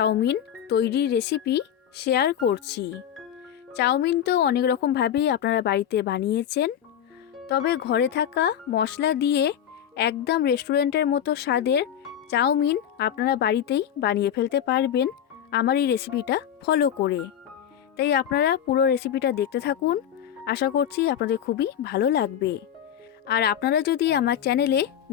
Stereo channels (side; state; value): right; quieter; 9.8 dB